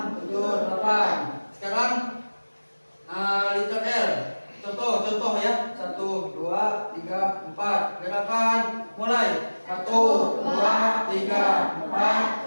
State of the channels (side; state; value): both; inverted; correlation -1.00